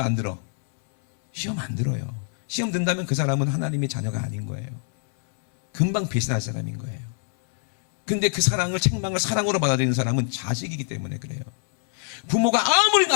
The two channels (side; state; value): right; silent; 62 dB below the other